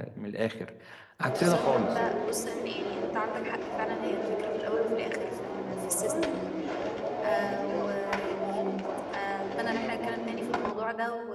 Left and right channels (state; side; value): identical; both; correlation 1.00